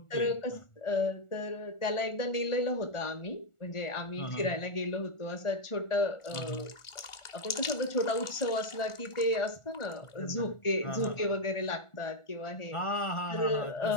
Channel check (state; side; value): late; right; 1.4 ms